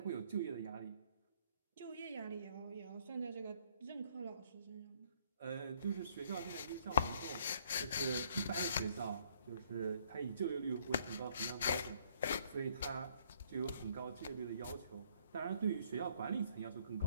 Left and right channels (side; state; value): both; inverted; correlation -0.64